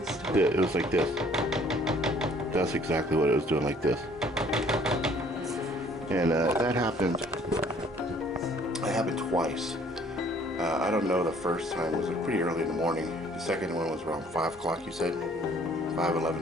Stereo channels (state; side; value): normal; both; correlation 0.58